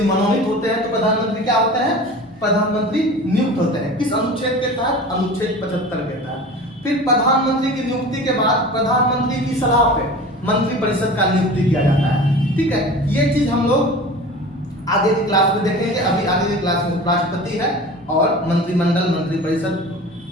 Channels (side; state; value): both; normal; correlation 0.37